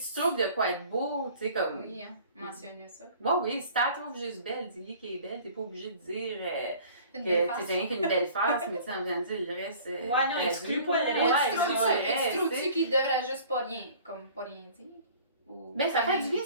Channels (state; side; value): inverted; both; correlation -0.48